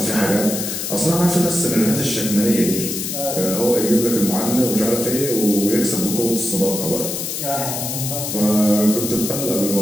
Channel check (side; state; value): left; noise; hiss, 4 dB below the sound